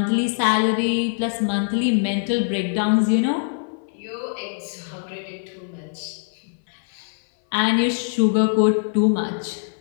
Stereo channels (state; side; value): silent; right; 60 dB below the other